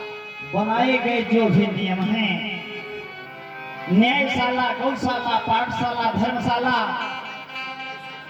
बनाए गए जो भी नियम हैं, न्यायशाला, गौशाला, पाठशाला, धर्मशाला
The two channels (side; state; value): both; identical; correlation 1.00